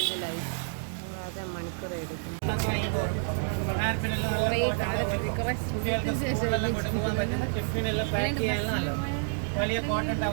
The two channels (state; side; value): silent; left; 58 dB below the other